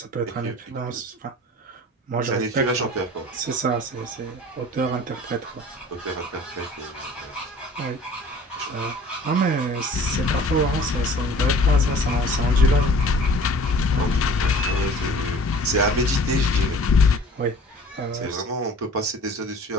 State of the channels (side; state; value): both; normal; correlation 0.47